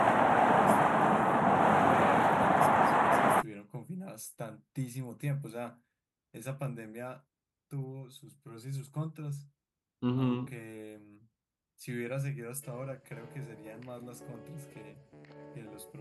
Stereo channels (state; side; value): identical; both; correlation 1.00